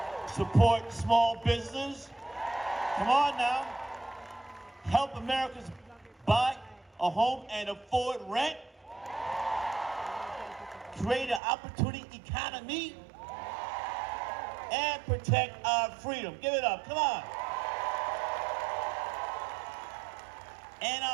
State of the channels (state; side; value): drops out; left; at 11.4 s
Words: Support small businesses. Come on now. Help Americans buy a home and afford rent. Create an opportunity economy. And protect our freedom. Give it up. Come on. And